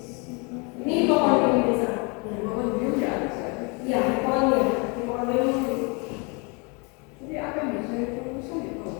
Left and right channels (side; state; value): right; quieter; 31.7 dB